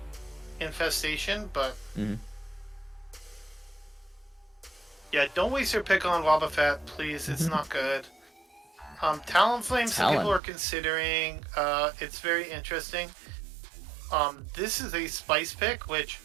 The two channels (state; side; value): drops out; left; at 10.4 s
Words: Infestation, but yeah, don't waste your pick on Wobbuffet, please. It's not good. Talonflame, some people are considering. It's very interesting. This is a spice pick, which